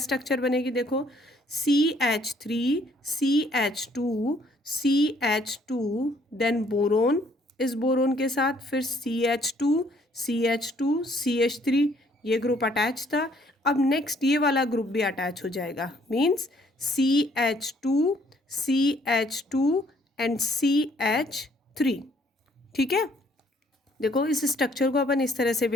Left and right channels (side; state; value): both; normal; correlation 0.64